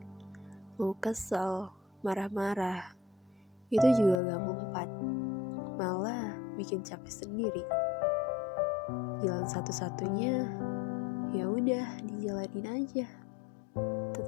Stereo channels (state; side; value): drops out; right; at 4.2 s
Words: Mau kesel, marah-marah, itu juga gak mempan. Malah bikin capek sendiri. Jalan satu-satunya, ya udah dijalanin aja.